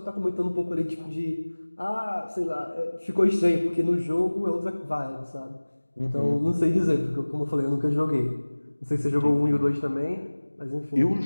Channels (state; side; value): inverted; both; correlation -1.00